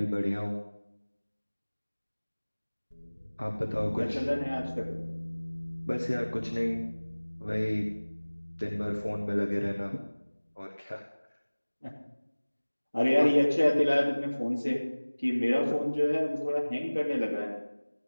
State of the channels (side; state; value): both; inverted; correlation -1.00